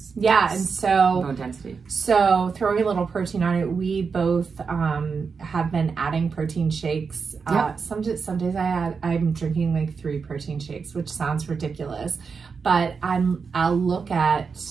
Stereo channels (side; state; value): left; quieter; 5.4 dB